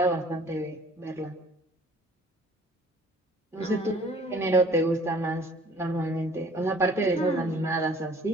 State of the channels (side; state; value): both; normal; correlation 0.53